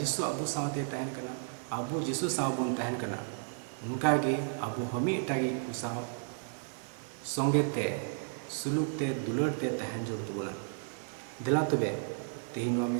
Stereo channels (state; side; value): silent; left; 56 dB below the other